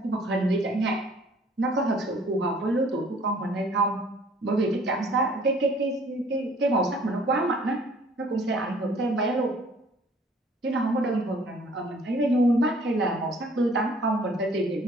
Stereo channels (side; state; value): both; normal; correlation 0.56